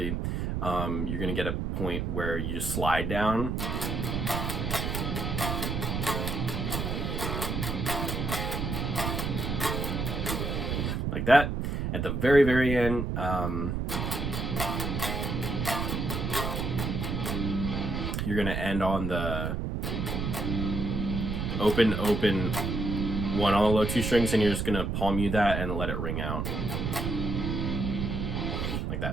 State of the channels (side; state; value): right; noise; rumble, 1 dB below the sound